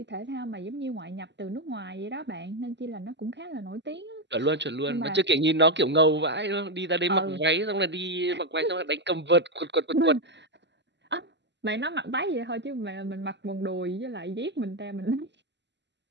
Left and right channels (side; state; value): left; late; 0.51 ms